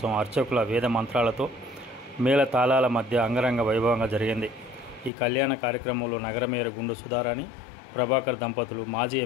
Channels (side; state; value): right; drops out; at 5.1 s